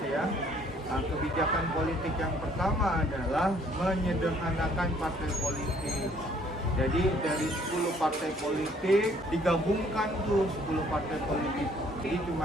ya, kebijakan politik yang pertama adalah menyederhanakan partai politik. Jadi dari 10 partai politik digabungkan tuh 10 partai politik. Jadi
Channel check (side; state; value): both; normal; correlation 0.61